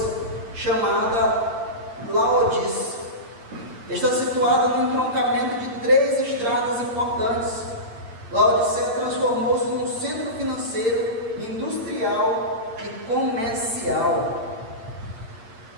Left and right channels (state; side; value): late; left; 8.8 ms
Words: chamada Laodice. Está situada no entroncamento de 3 estradas importantes. Laodiceia transformou-se num centro financeiro, industrial e comercial.